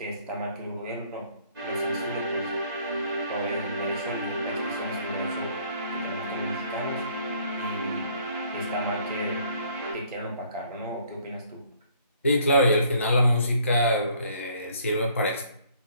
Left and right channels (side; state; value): both; inverted; correlation -0.61